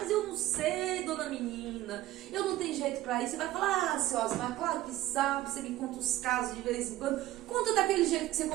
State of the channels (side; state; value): left; quieter; 15.2 dB